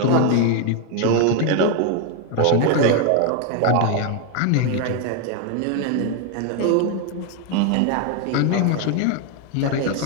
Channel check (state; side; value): different; both; correlation 0.01